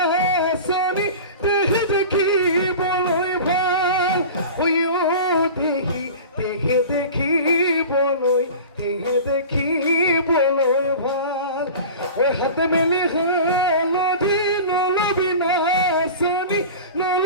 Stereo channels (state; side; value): inverted; both; correlation -0.35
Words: দেখি দেখি বলই ভাল দেখি দেখি দেখি দেখি বলই ভাল ওই হাতে মেলি নলবি নলবি নাচনি